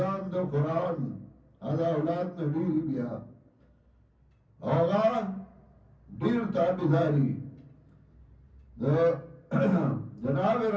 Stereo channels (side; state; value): both; identical; correlation 1.00